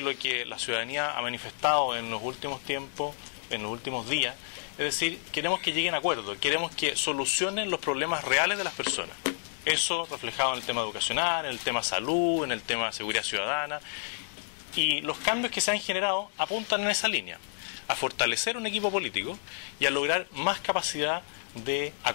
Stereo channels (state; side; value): silent; right; 58 dB below the other